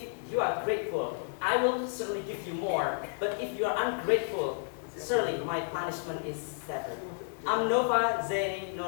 you are grateful, I will certainly give you more. But if you are ungrateful, certainly my punishment is severe. I'm Nova Zaini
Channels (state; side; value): silent; right; digital silence